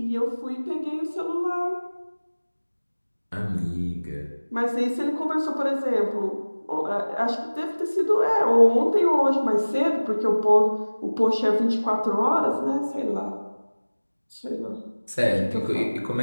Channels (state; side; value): inverted; both; correlation -1.00